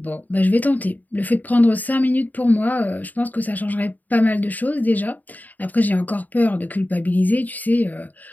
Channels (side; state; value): right; late; 0.082 ms